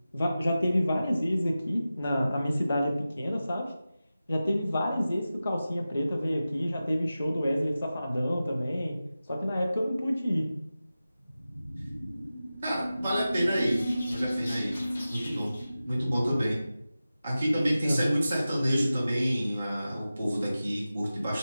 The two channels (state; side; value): inverted; both; correlation -0.94